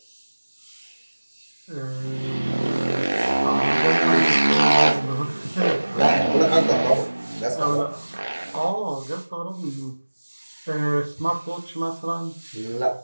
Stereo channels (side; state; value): both; inverted; correlation -1.00